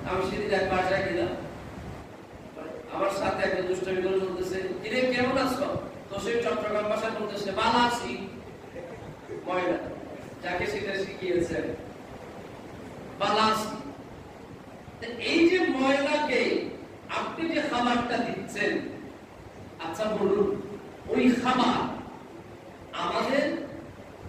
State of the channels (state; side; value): identical; both; correlation 1.00